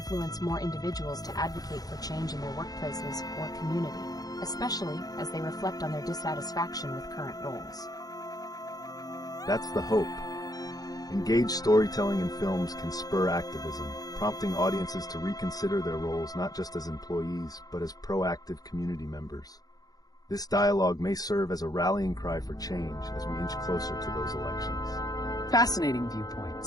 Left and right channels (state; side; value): late; right; 0.18 ms